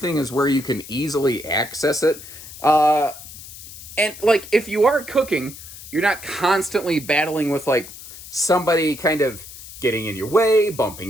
is where you can easily access it. And like, if you are cooking, you're not constantly battling with like somebody kind of getting in your way,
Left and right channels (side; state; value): left; noise; hiss, 15 dB below the sound